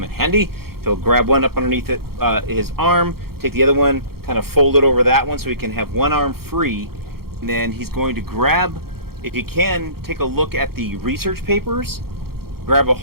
in handy. He'll grab one up underneath his arm, take the other one, kind of fold it over that one so he can have one arm free. And then he's going to grab, if you can, take a look at the research papers, grab a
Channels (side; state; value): left; late; 0.94 ms